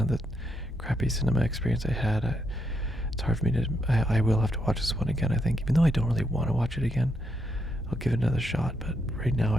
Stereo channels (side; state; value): both; normal; correlation 0.79